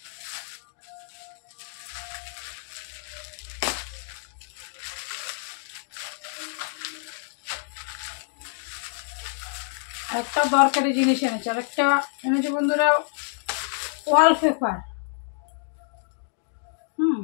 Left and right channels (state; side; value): silent; right; digital silence